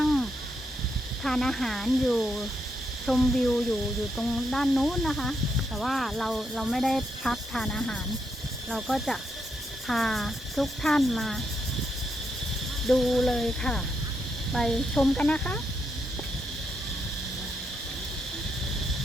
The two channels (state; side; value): normal; both; correlation 0.80